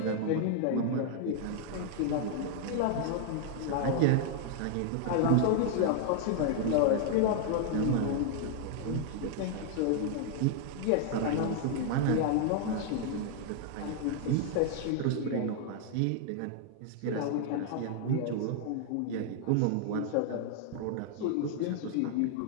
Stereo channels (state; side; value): different; both; correlation 0.00